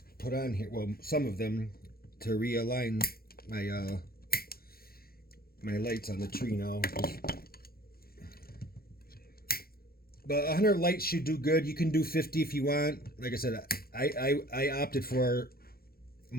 put on here. Well, some of them to realign my my lights on the tree now. But 100 lights should do good. You can do 50 if you want. Like I said, I opted for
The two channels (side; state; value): right; late; 0.44 ms